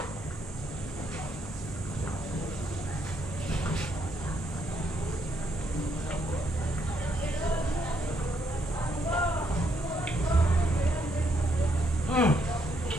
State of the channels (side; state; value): both; normal; correlation 0.74